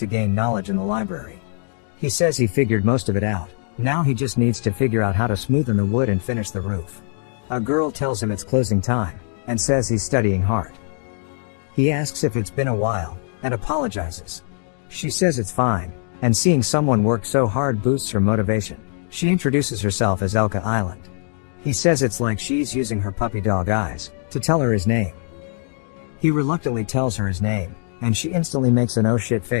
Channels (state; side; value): silent; right; 56 dB below the other